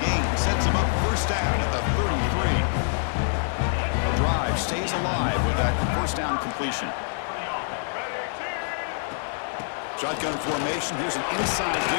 gain sets them up first down at the 33. The drive stays alive with that first down completion. Shotgun formation. Here's an inside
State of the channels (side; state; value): right; silent; digital silence